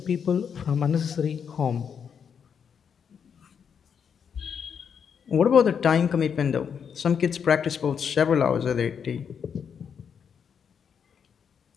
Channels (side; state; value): right; quieter; 7.2 dB